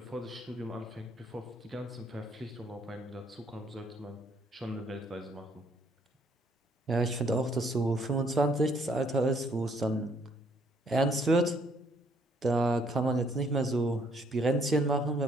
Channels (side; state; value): both; normal; correlation 0.66